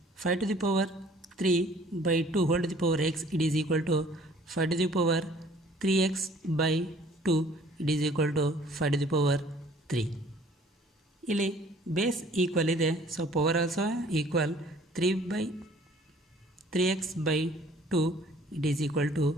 5 to the power 3/2 whole to the power x it is equal to 5 to the power 3x/2 it is equal to 5 to the power 3. ಇಲ್ಲಿ ಬೇಸ್ ಈಕ್ವಲ್ ಇದೆ, so power also equal. 3x/2 it is equal to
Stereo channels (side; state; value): both; normal; correlation 0.55